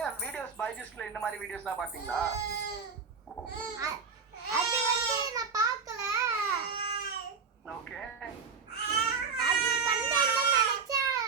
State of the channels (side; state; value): left; quieter; 5.4 dB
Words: வீடியோஸ் பைஜூஸ்ல இந்த மாதிரி வீடியோஸ்லாம் பாத்தீங்களா அது வந்து நான் பார்க்கல ஓகே அது பண்ணேன்னு நினைச்சா